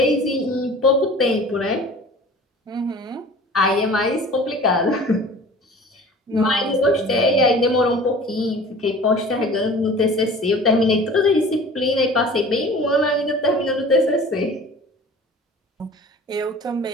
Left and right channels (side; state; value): both; normal; correlation 0.44